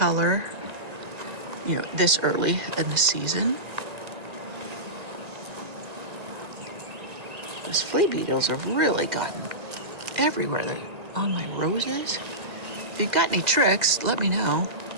you know, this early in the season. Those flea beetles have really gotten everywhere. They're on my roses. If you've got any tricks, let me know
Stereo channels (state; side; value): late; left; 1.8 ms